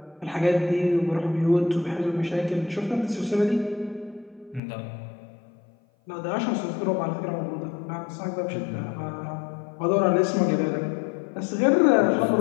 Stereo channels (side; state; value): right; drops out; at 4.6 s